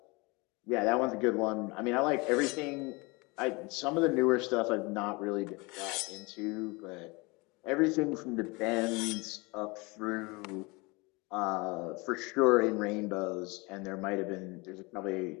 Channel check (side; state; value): right; quieter; 26.3 dB